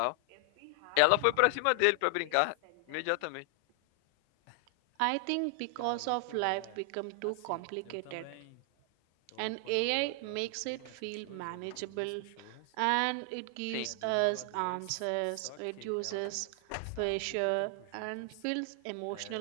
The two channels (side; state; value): both; different; correlation 0.00